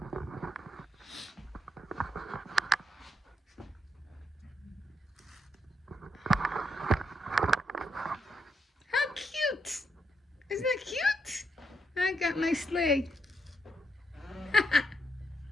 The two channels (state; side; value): normal; both; correlation 0.79